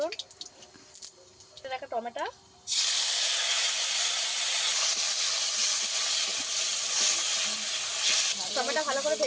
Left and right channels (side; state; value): both; identical; correlation 1.00